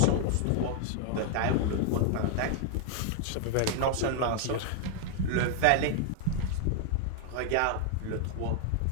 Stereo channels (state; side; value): different; both; correlation 0.00